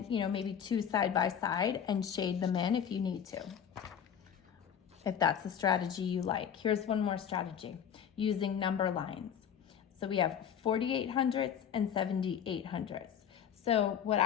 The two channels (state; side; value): quieter; right; 8.5 dB